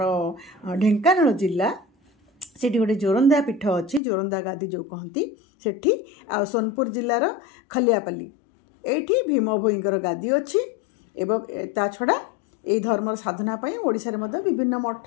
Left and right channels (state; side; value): drops out; right; at 4.0 s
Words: ढेंकानाल जिला से गोटे जोरंदा पीठ अच्छी जोरंदा गादी जो कहती सेठी आ सोनपुर जिलार खलियापल्ली एठी भीम भोईंकर गादी अच्छी एवं ता छड़ा ये धर्म साधना पाई ओडिशा रे मध्य विभिन्न